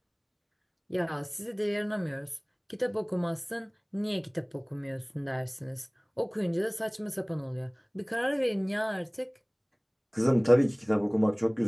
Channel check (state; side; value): identical; both; correlation 1.00